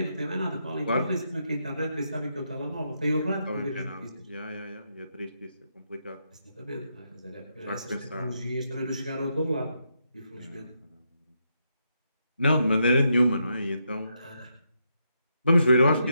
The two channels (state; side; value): inverted; both; correlation -0.81